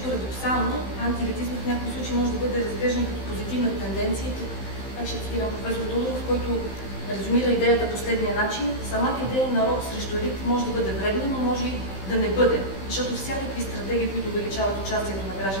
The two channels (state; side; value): late; right; 15 ms